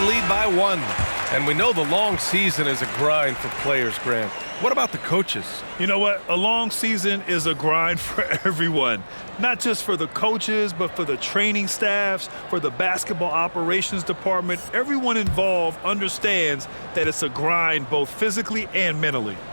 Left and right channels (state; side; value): inverted; both; correlation -1.00